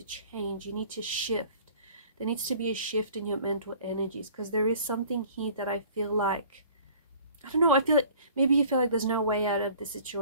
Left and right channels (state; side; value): inverted; both; correlation -0.50